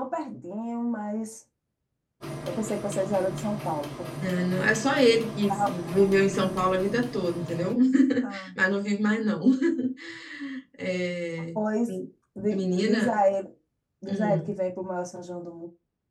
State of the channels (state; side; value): identical; both; correlation 1.00